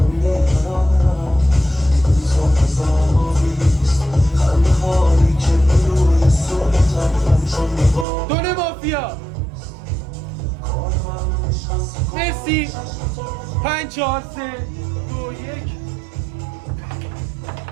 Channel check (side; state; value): left; drops out; at 8.1 s